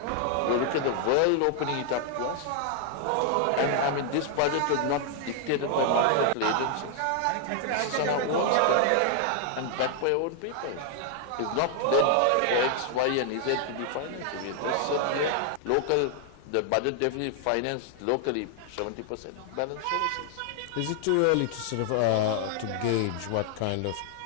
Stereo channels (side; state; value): both; different; correlation 0.00